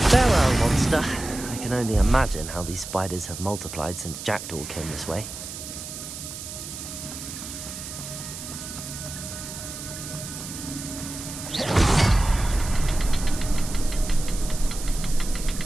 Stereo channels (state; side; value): noise; right; hiss, 10 dB below the sound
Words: Farewell, monster. I can only imagine how these spiders have multiplied since Jackdaw came this way.